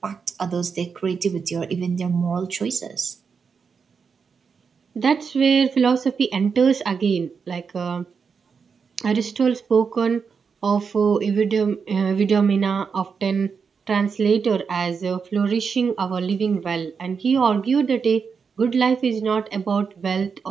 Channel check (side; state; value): left; quieter; 5.8 dB